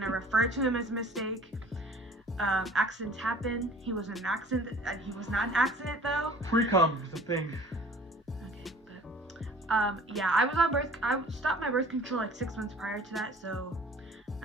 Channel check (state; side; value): normal; both; correlation 0.49